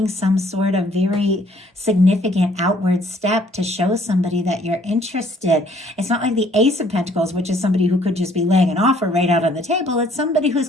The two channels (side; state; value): both; normal; correlation 0.62